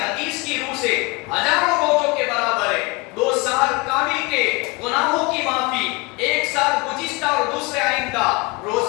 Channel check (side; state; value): right; quieter; 26.1 dB